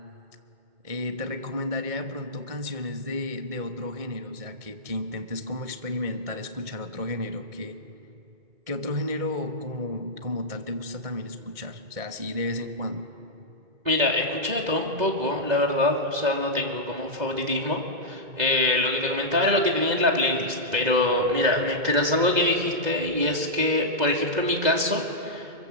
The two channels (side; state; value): left; late; 2.0 ms